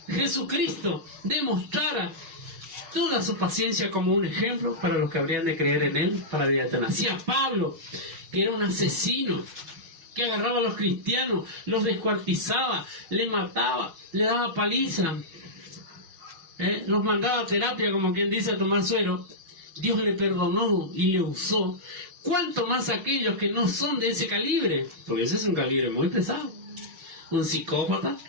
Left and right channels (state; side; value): late; left; 5.5 ms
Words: Jesucristo demostrara toda su paciencia como un ejemplo para los que habrían de creer en él para la vida eterna. Así a Pablo, que era un asesino, que agarraba a los cristianos, los descuartizaba, le mataba, le daba paliza, los mandaba a terapia, como quien dice, a tomar suero. Dios le perdonó y le usó. ¿Cuánto más aquellos que no son de ese calibre? Porque ese es un calibre muy pesado. Un psicópata